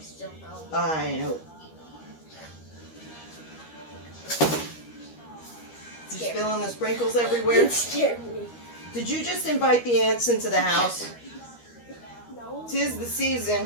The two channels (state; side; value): late; right; 13 ms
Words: I know. Did you fill in the sprinkles everywhere? It scared me. Did you just invite the ants into the house? No. 'Tis the